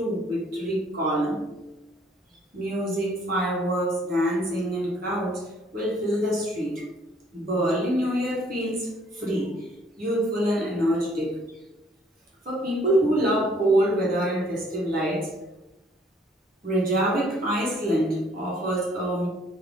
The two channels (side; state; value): both; normal; correlation 0.62